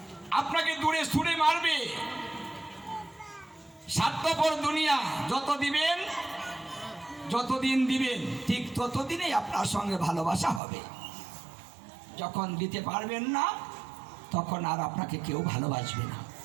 আপনাকে দূরে ছুঁড়ে মারবে। স্বার্থপর দুনিয়া যত দিবেন, যতদিন দিবেন, ঠিক ততদিনেই আপনার সঙ্গে ভালোবাসা হবে। যখন দিতে পারবেন না, তখন আর আপনাকে কেউ ভালোবাসবে না।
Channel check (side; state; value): left; drops out; at 10.6 s